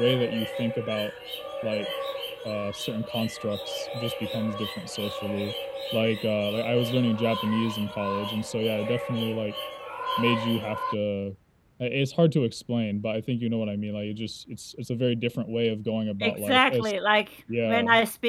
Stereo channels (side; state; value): both; identical; correlation 1.00